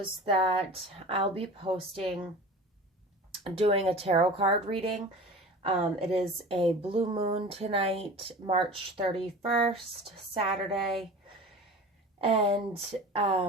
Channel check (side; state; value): both; normal; correlation 0.37